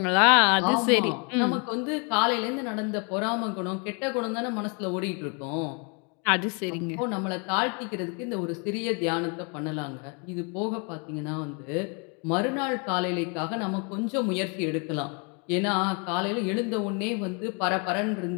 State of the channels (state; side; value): quieter; right; 35.2 dB